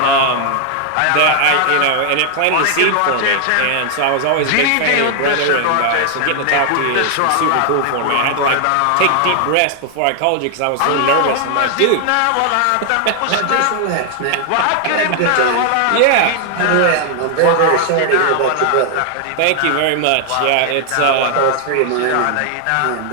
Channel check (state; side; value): different; both; correlation 0.00